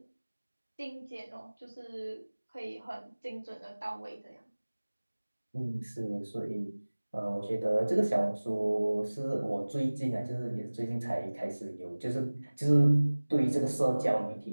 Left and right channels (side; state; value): both; inverted; correlation -1.00